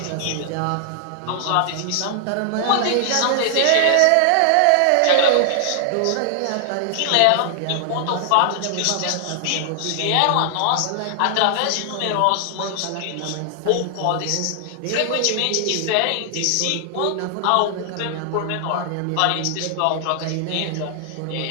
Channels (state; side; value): different; both; correlation 0.00